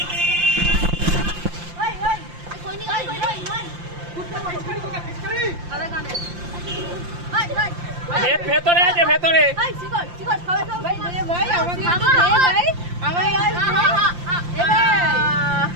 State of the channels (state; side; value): late; left; 5.7 ms